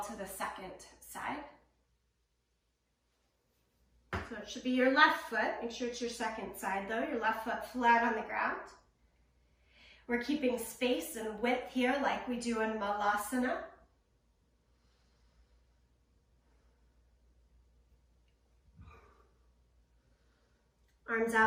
to the second side. So it should be your left foot. Make sure it's your second side though. Your left foot flat on the ground. We're keeping space and width here like we do in Malasana. Arms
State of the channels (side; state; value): both; identical; correlation 1.00